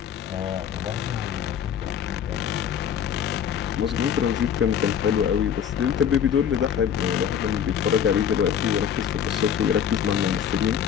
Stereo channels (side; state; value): right; quieter; 8.5 dB